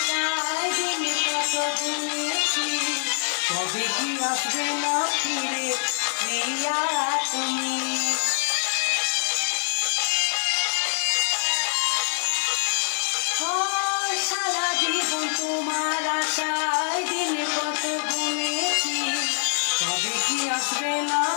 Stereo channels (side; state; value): right; silent; digital silence